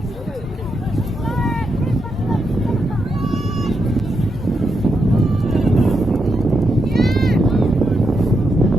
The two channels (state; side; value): normal; both; correlation 0.83